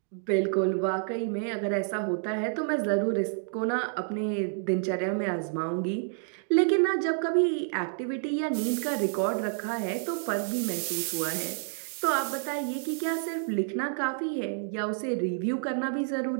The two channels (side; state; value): left; silent; digital silence